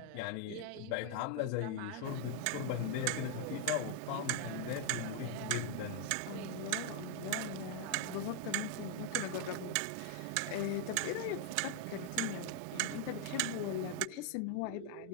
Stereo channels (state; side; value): different; both; correlation 0.00